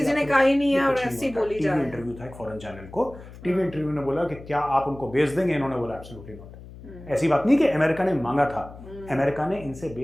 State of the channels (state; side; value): noise; left; hum, 17 dB below the sound